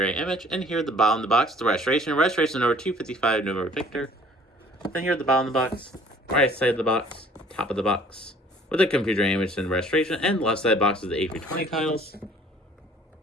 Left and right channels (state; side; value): normal; both; correlation 0.54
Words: image. And here at the bottom of the box, the registration. Registration number 255 November Victor. Then here at the bottom of the box, right side of the box, top of the box, with the computer image and registration. And left side box is the A320 titles.